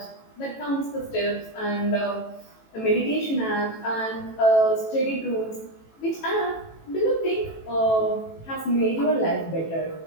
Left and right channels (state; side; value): late; right; 18 ms